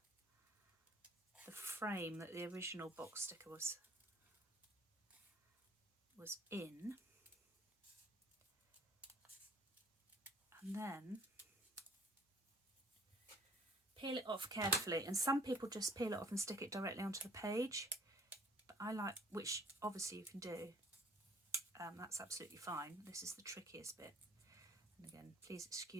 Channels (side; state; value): both; normal; correlation 0.56